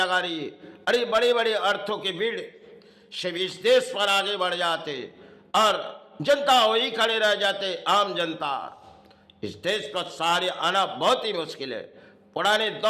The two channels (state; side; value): identical; both; correlation 1.00